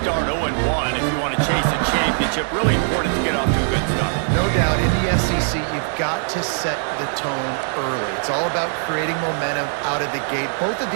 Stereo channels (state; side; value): silent; left; 59 dB below the other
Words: 0-1 if you want to chase a championship. Really important to get off to a good start. No doubt, in the SEC, you've got to set the tone early. It's all about creating momentum out of the gate. Both of